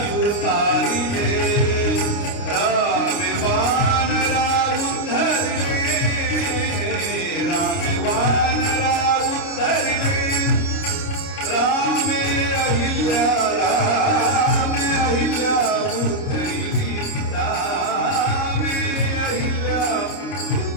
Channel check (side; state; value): right; late; 29 ms